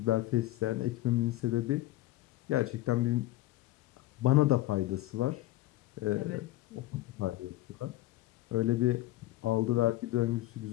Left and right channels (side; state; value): right; quieter; 16.4 dB